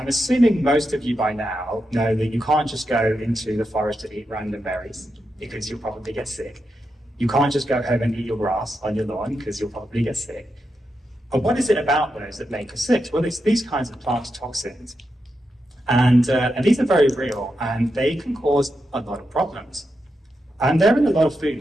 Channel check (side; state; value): both; normal; correlation 0.86